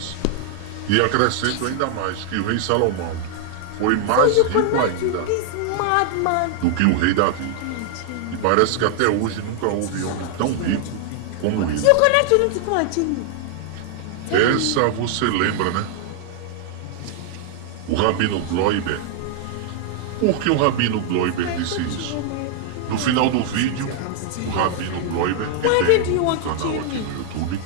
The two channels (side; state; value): both; different; correlation 0.00